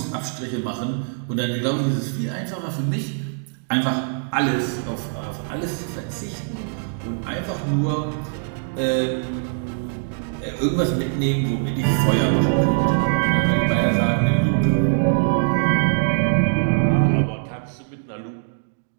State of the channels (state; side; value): silent; left; digital silence